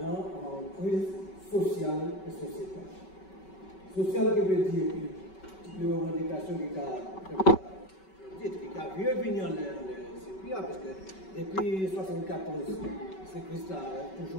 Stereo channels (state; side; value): late; right; 5.3 ms